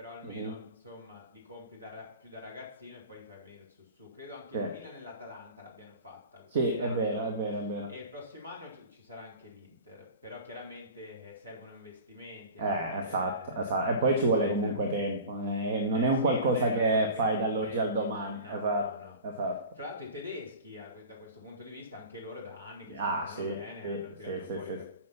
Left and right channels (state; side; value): inverted; both; correlation -0.36